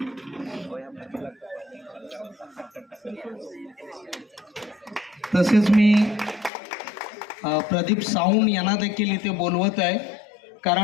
तसेच मी प्रदीप साऊंड यांना देखील इथे बोलवत आहे,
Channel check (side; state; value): right; drops out; at 6.5 s